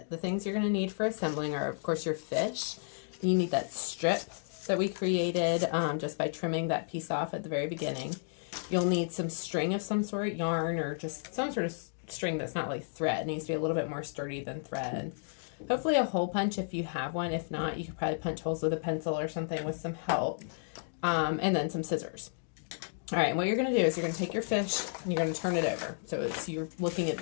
The things you're going to need for assembling are, of course, your fish. You need that strip that we created just by trimming that piece off at the very beginning. You'll need some string of some sort, yarn, or just some sort of string that's not like thread. It needs to be a little bit more sturdy than thread. Hopefully a hole punch if you have one. If not, you could probably punch holes with a pencil or something with some help. And then some scissors. All right, what you're going to do is you're going to take your fish and you're going to turn it over. So you're looking at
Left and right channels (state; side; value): silent; right; digital silence